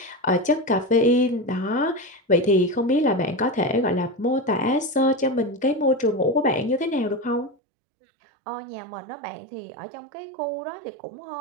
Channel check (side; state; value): left; drops out; at 7.6 s